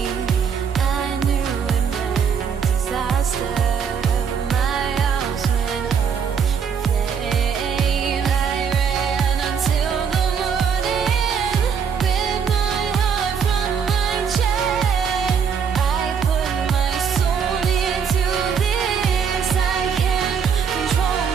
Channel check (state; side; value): quieter; left; 6.8 dB